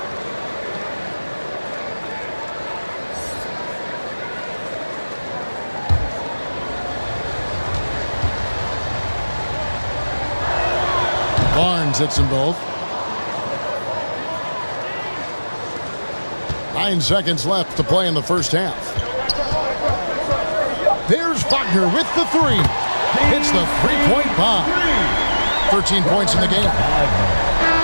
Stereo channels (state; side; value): inverted; both; correlation -1.00